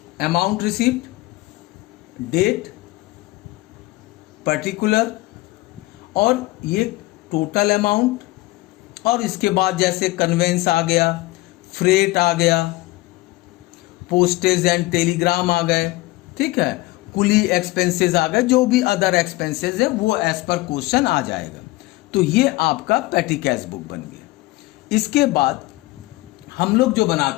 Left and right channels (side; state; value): right; quieter; 19.8 dB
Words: अमाउंट रिसीव्ड, डेट, पर्टिकुलर, और ये टोटल अमाउंट, और इसके बाद जैसे कन्वेंस आ गया, फ्रेट आ गया, पोस्टेज एंड टेलीग्राम आ गए, ठीक है, कुली एक्सपेंसेस आ गए, जो भी अदर एक्सपेंसेस है वो एज पर क्वेश्चन आ जाएगा। तो ये आपका पैटी कैश बुक बन गया। इसके बाद हम लोग जो